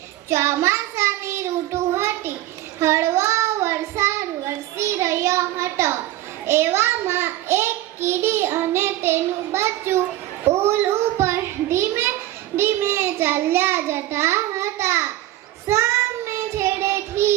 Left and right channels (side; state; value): left; quieter; 15.2 dB